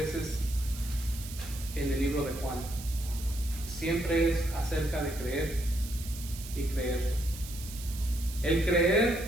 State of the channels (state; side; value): noise; right; hiss, 13 dB below the sound